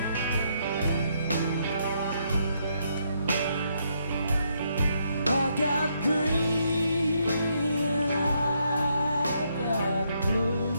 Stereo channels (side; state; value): both; inverted; correlation -0.75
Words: Got green and I got